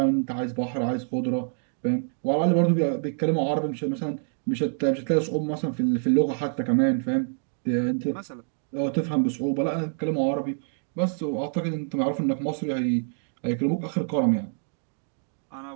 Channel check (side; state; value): left; silent; digital silence